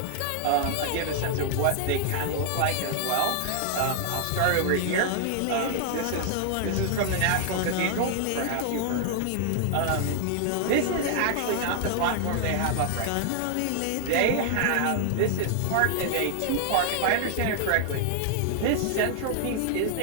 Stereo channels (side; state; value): both; different; correlation 0.00